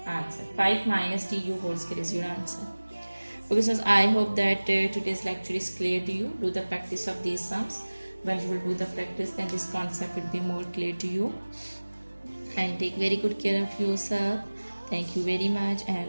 answer. 5 minus tu whole square is your answer. Okay, so I hope that today's lecture is clear to you. Do the practice of these sums. When you will do the practice, then this concept will be more clear to you. And take very good care of yourself. Thank you very much, and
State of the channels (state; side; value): inverted; both; correlation -1.00